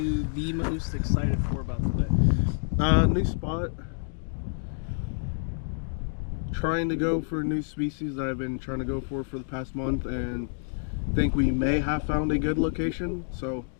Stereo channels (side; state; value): right; silent; digital silence